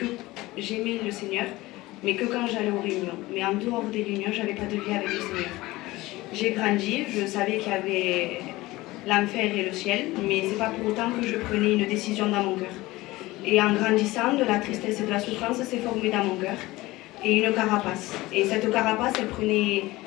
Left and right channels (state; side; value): quieter; right; 19.3 dB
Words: j'aimais le Seigneur, mais que quand j'allais aux réunions. Mais en dehors des réunions, j'avais pas de vie avec le Seigneur. J'ai grandi, je savais qu'il y avait l'enfer et le ciel, mais c'est pas pour autant que je prenais une décision dans mon cœur. Et en grandissant, de la tristesse et de la souffrance s'est formée dans mon cœur. Et une carapace. Et cette carapace, elle prenait